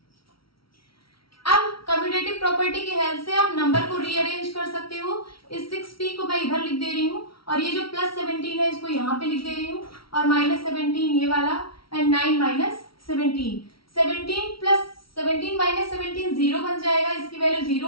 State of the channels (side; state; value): right; late; 0.75 ms